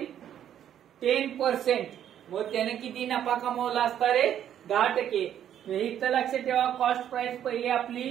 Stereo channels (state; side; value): quieter; left; 10.2 dB